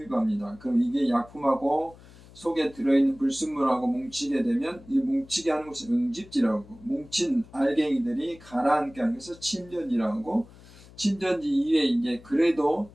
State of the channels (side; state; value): left; noise; hum, 22 dB below the sound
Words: 그럼 이게 약품하고 속에 들어있는 불순물하고 뭉치게 되면 이 뭉치게 하는 것을 응집지라고, 뭉친 알갱이들이 가라앉게 하는 것을 침전지라고 하고, 침전지 이외에 이제 그래도